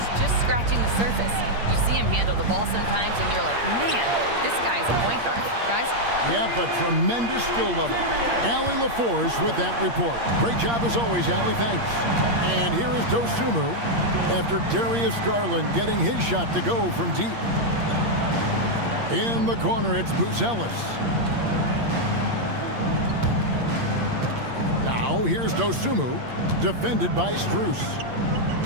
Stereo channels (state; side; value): late; left; 8.6 ms